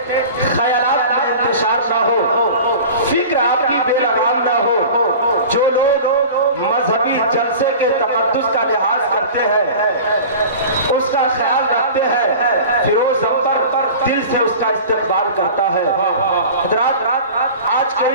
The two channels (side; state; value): both; inverted; correlation -0.38